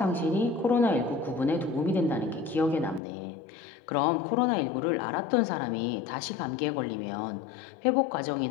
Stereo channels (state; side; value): drops out; right; at 3.0 s